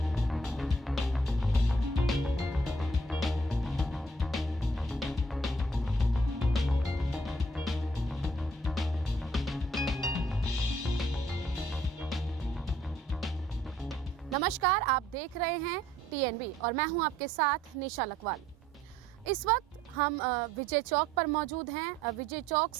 नमस्कार, आप देख रहे हैं TNB और मैं हूं आपके साथ निशा लकवाल। इस वक्त हम विजय चौक पर मौजूद हैं। विजय चौक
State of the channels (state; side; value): normal; both; correlation 0.63